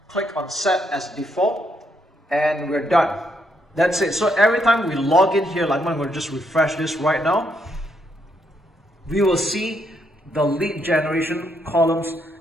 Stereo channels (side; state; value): both; normal; correlation 0.76